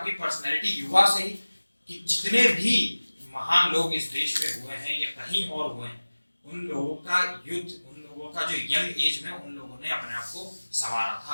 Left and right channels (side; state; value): both; inverted; correlation -1.00